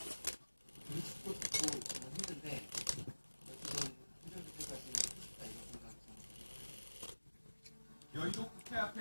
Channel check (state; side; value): inverted; both; correlation -1.00